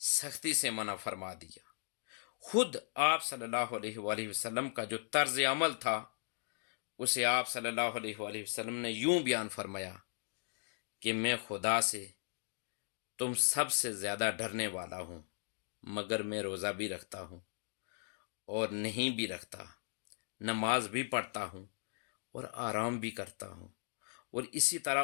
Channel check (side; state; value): right; silent; digital silence